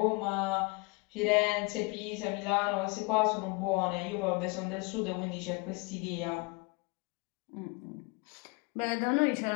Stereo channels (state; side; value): quieter; right; 28.2 dB